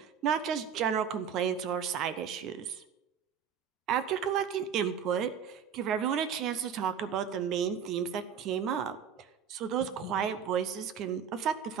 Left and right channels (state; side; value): quieter; left; 7.6 dB